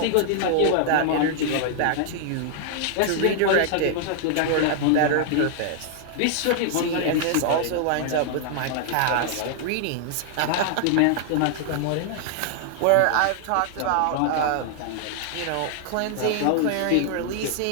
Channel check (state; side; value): different; both; correlation 0.00